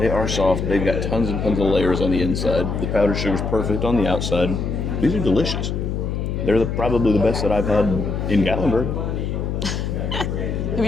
are soft. They've got tons and tons of layers on the inside. The powdered sugar's perfect on the outside. These are delicious. They're probably the best that I've had in Gatlinburg. Have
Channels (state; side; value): noise; left; hum, 2 dB below the sound